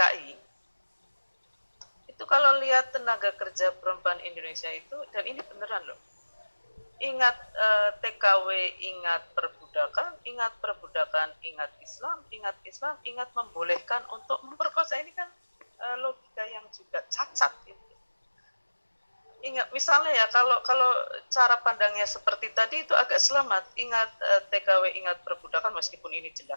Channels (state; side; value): inverted; both; correlation -1.00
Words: itu kalau lihat tenaga kerja perempuan Indonesia itu, dan ini beneran loh, ingat TKW, ingat perbudakan, ingat Islam, ingat membolehkan untuk memperkosa. Ini kan logika yang juga cacat gitu. misalnya ya, kalau cara pandangnya seperti tadi itu agak selamat. Ingat TKW, ingat perbudakan, meskipun ini